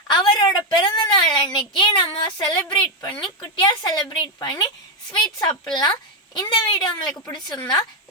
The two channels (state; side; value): normal; both; correlation 0.04